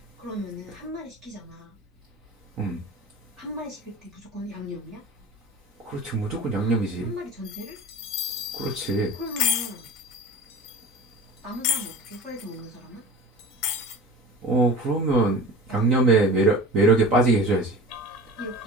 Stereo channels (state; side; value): normal; both; correlation 0.36